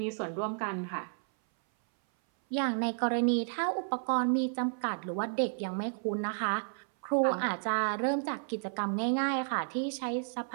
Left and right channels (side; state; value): left; silent; 56 dB below the other